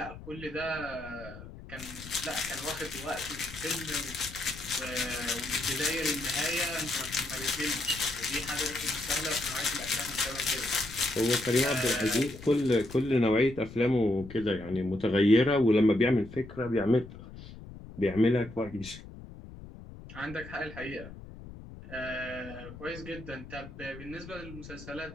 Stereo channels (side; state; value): left; noise; rumble, 15 dB below the sound